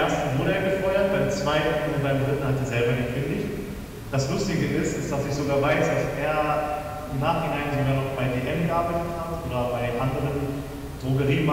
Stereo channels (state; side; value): identical; both; correlation 1.00